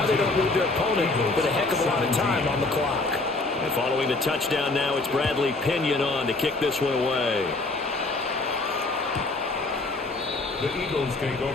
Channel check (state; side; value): quieter; right; 3.2 dB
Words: they don't leave their opponent with a heck of a lot of time on the clock. And following the touchdown now, it's Bradley Pinion on to kick this one away. The Eagles take